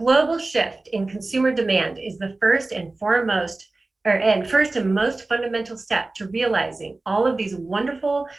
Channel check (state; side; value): quieter; left; 3.2 dB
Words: shift in consumer demand is the first and most fundamental step to realizing all of these wonderful